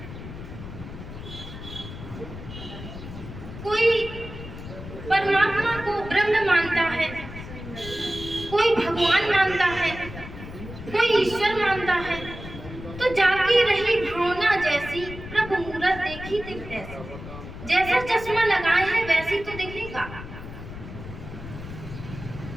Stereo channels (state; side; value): noise; left; rumble, 12 dB below the sound